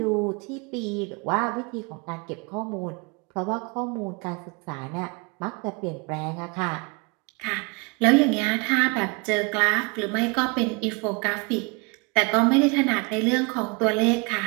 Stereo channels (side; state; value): left; quieter; 30.3 dB